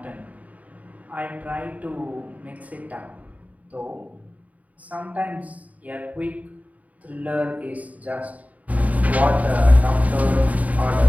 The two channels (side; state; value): left; late; 0.071 ms